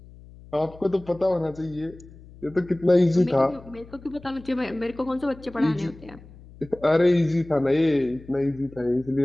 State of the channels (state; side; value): noise; left; hum, 21 dB below the sound